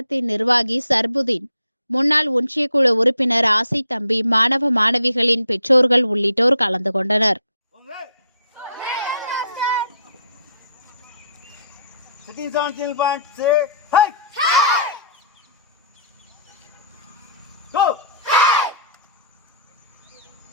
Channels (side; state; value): both; inverted; correlation -0.60